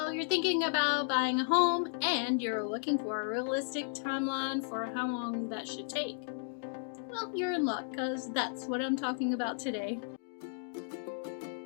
you're thinking about buying a home and you're looking for a realistic timeline for how long that should take. Well, you're in luck because that's what I'm talking about today.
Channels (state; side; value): silent; right; digital silence